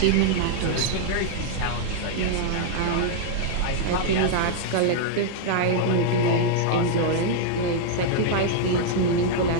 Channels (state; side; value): different; both; correlation -0.01